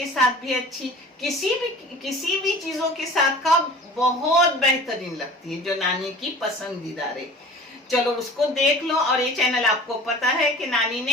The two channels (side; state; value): both; normal; correlation 0.42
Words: साथ भी अच्छी, किसी भी चीजों के साथ का बहुत बेहतरीन लगती है, जो नानी की पसंदीदा है। चलो उसको देख लो। और ये चैनल आपको पता है कि नानी